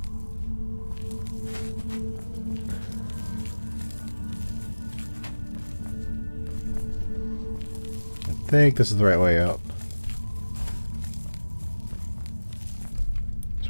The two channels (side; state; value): both; inverted; correlation -1.00